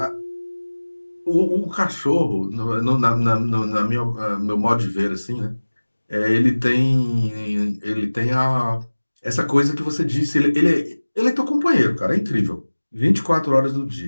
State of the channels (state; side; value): inverted; both; correlation -1.00